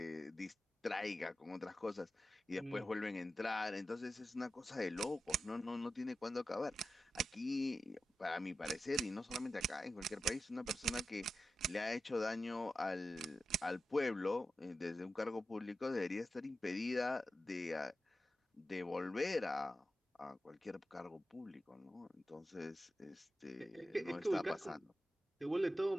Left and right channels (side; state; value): both; normal; correlation 0.91